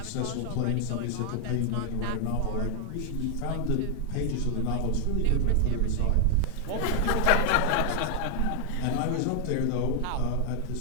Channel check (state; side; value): different; both; correlation 0.00